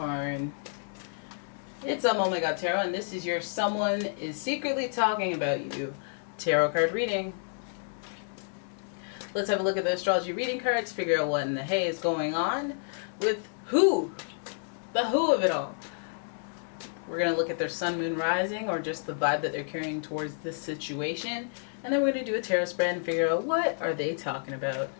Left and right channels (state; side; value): silent; right; digital silence